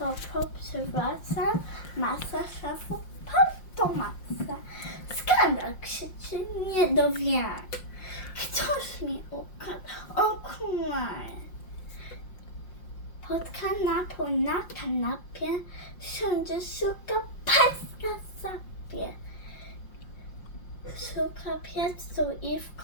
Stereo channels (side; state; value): right; late; 5.6 ms